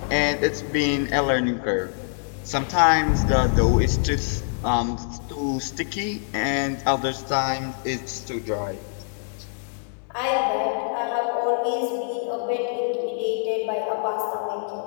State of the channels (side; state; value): right; silent; 62 dB below the other